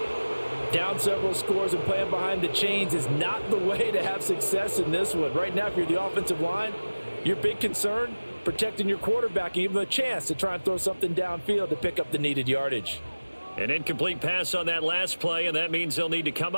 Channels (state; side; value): inverted; both; correlation -1.00